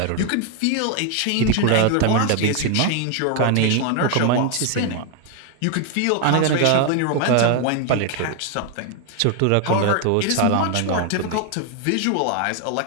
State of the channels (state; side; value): different; both; correlation 0.01